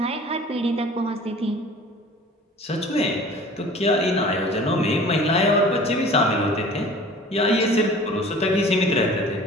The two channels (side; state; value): both; normal; correlation 0.45